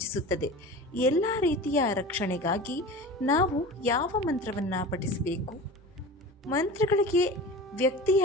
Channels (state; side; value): normal; both; correlation 0.34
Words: ಎಲ್ಲ ರೀತಿಯ ರಕ್ಷಣೆಗಾಗಿ ನಾವು ಯಾವ ಮಂತ್ರವನ್ನು ಪಠಿಸಬೇಕು? ಮಂತ್ರಗಳಿಗೆ ವ್ಯಕ್ತಿಯ